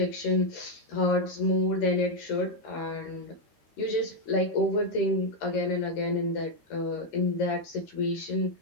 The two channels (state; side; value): late; right; 13 ms